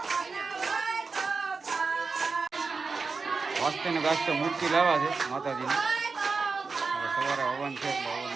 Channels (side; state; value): left; quieter; 4.5 dB